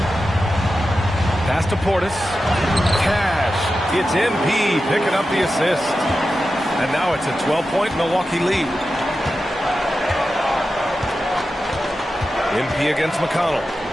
Pass to Portis. Cash. It's MP picking up the assist. And now it's a 12-point Milwaukee lead. MP against McConnell.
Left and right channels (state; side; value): normal; both; correlation 0.92